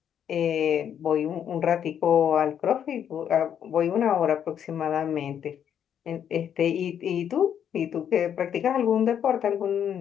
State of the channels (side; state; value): right; quieter; 9.0 dB